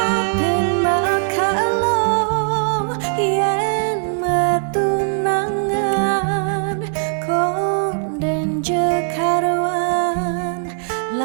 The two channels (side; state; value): left; silent; digital silence